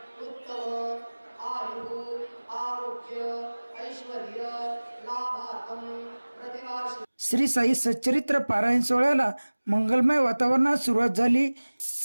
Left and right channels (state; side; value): inverted; both; correlation -1.00